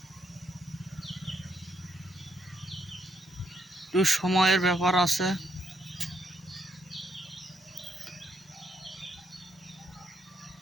একটু সময়ের ব্যাপার আছে।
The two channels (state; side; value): normal; both; correlation 0.76